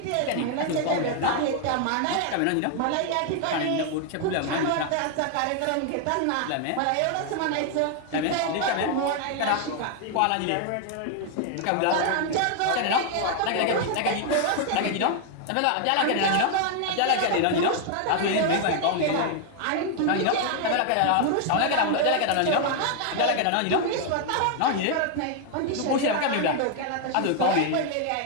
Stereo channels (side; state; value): both; different; correlation 0.00